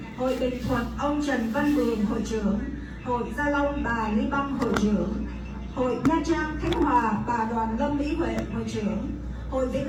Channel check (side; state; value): both; identical; correlation 1.00